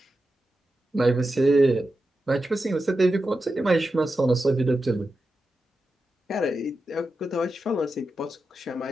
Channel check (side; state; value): both; normal; correlation 0.90